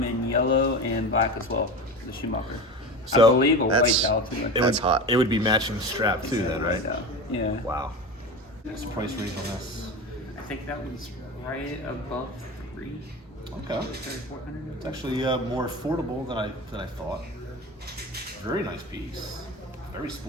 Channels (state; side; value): normal; both; correlation 0.28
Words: in yellow and black as well. The Schumacher. So, I believe a white that's- dial too. It That's would, hot. It would be matching strap too, then, right? Yeah. Wow. What's the price range on this? I think that one's right above 3. Okay. 3,400. It's actually more affordable than I thought. Very nice piece. Very